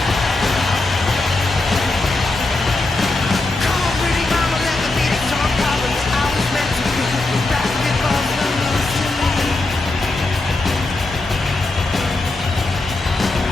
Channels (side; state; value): right; quieter; 3.0 dB